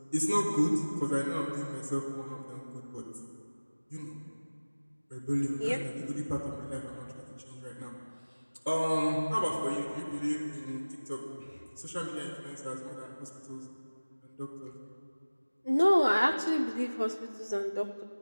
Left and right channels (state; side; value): inverted; both; correlation -1.00